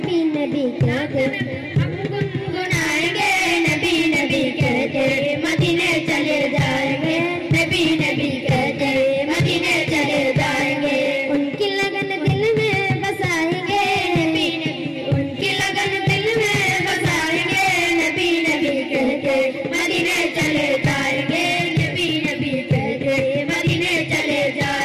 नबी कहते हम गुनगुनाएंगे, नबी नबी कहते मदीने चले जाएंगे, नबी नबी कहते मदीने चले जाएंगे। उनकी लगन दिल में बसाएंगे, नबी नबी उनकी लगन दिल में बसाएंगे, नबी नबी कहते मदीने चले जाएंगे, नबी नबी कहते मदीने चले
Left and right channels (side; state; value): both; identical; correlation 1.00